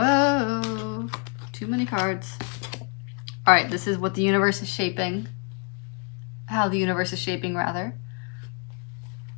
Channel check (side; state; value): right; quieter; 37.7 dB